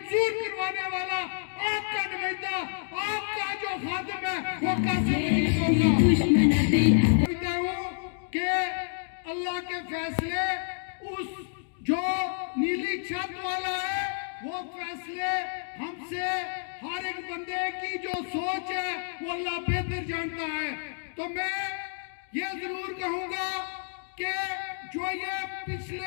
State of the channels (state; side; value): silent; right; digital silence